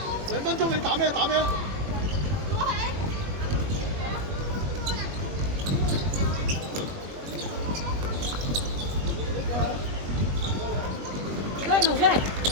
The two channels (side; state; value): left; late; 21 ms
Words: ？2分鐘你打咩？打咩？